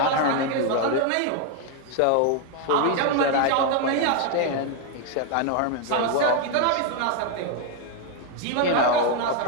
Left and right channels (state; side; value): different; both; correlation 0.01